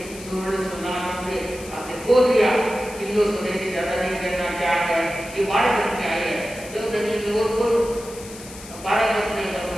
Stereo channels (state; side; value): noise; left; hiss, 16 dB below the sound